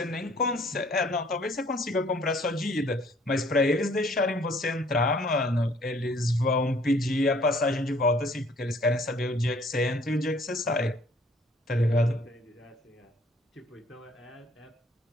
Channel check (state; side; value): normal; both; correlation 0.59